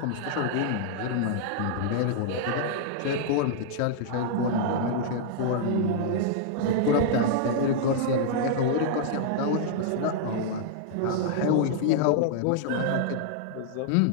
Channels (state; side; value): different; both; correlation -0.01